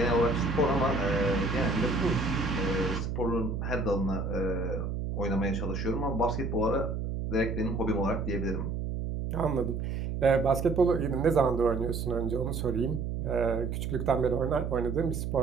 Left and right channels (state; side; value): noise; right; hum, 3 dB below the sound